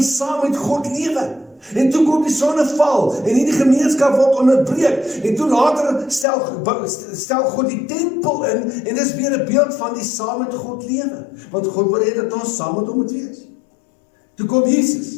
saam met God lewe. En toe kom die sonneval, en hierdie gemeenskap word onderbreek, en toe later stel God die tempel in, en dis weer 'n beeld van die saam met God lewe, want God wil hê dat ons saam met hom moet wees. Toe kom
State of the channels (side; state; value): right; drops out; at 6.2 s